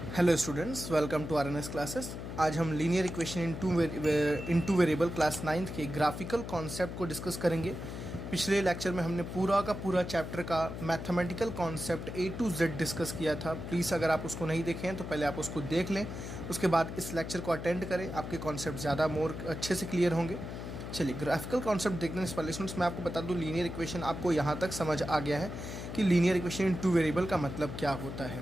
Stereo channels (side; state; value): left; noise; hum, 8 dB below the sound